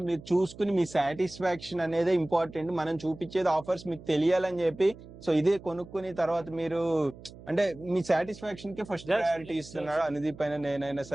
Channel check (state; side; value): noise; right; hum, 18 dB below the sound